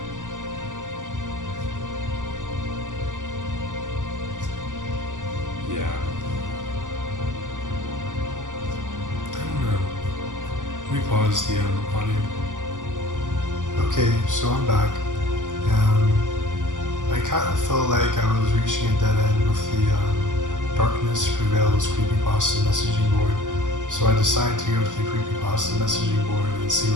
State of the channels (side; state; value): left; late; 0.87 ms